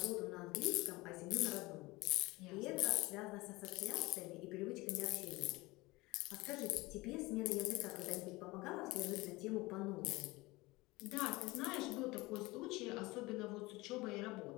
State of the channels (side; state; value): right; quieter; 21.8 dB